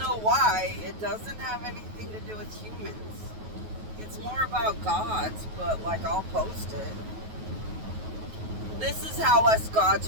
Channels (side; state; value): left; late; 9.3 ms